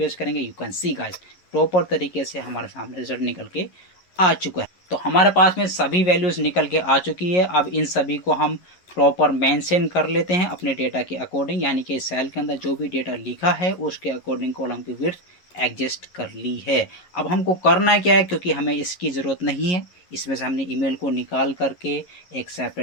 करेंगे, you can see guys proper तरीके से हमारे सामने रिजल्ट निकल के आ चुका है। तो हमारे पास में सभी वैल्यूज निकल के आ चुकी है। अब इन सभी को हम प्रॉपर मेंशन कर लेते हैं अपने डेटा के अकॉर्डिंग, यानी कि सेल के अंदर जो भी डेटा लिखा है उसके अकॉर्डिंग कॉलम की विड्थ एडजस्ट कर ली है। अब हमको करना क्या है, क्योंकि हमें इसकी ज़रूरत नहीं है, इसमें से हमने ईमेल को निकाल करके एक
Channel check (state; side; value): late; right; 11 ms